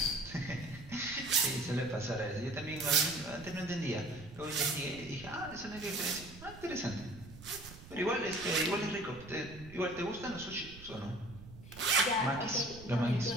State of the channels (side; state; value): right; noise; rumble, 16 dB below the sound